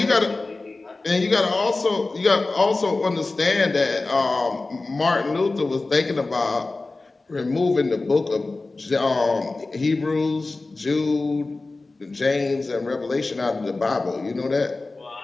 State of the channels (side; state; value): right; quieter; 3.4 dB